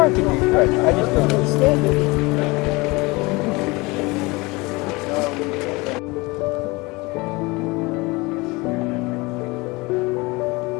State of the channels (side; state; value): right; quieter; 24.2 dB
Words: I can read French. I just don't understand it.